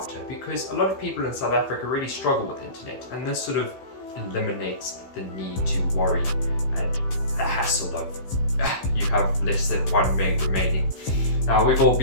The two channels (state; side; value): late; right; 15 ms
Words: because a lot of people in South Africa really struggle with internet, and this sort of eliminates the need to worry and the hassle of you have less than 1 meg remaining. Now, we've all